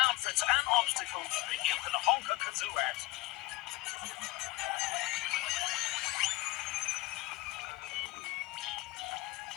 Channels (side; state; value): right; quieter; 21.0 dB